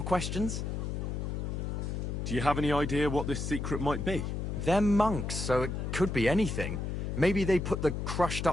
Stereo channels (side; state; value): left; noise; hum, 3 dB below the sound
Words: questions? Do you have any idea what this secret might be? They're monks, so it could be anything. Maybe they put the